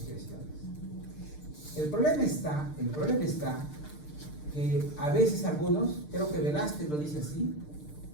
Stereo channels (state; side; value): late; right; 6.6 ms